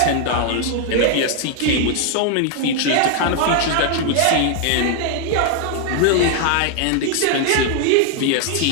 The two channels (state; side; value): different; both; correlation 0.00